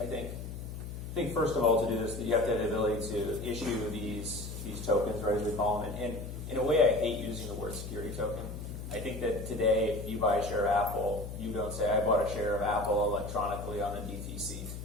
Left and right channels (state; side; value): noise; left; hum, 8 dB below the sound